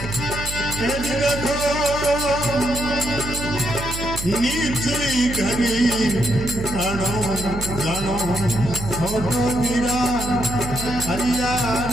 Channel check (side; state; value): right; noise; hum, 8 dB below the sound